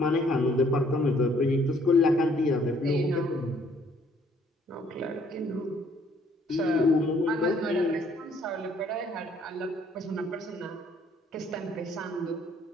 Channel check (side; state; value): both; normal; correlation 0.63